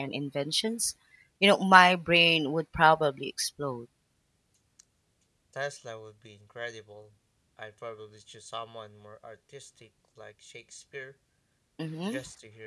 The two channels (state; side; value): identical; both; correlation 1.00